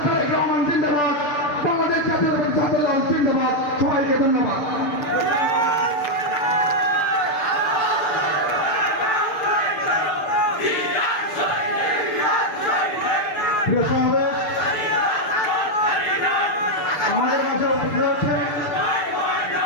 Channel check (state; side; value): late; right; 6.8 ms